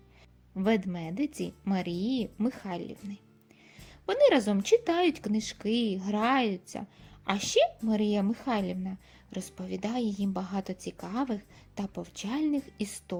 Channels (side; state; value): both; identical; correlation 1.00